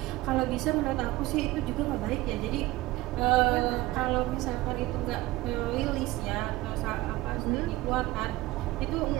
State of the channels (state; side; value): quieter; left; 18.2 dB